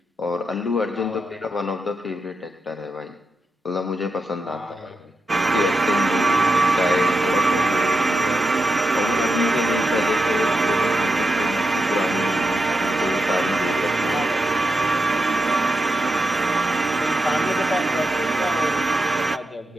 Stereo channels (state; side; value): normal; both; correlation 0.88